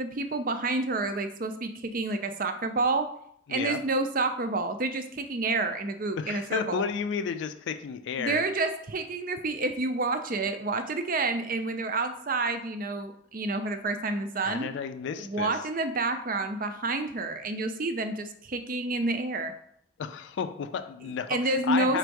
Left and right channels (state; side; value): normal; both; correlation 0.10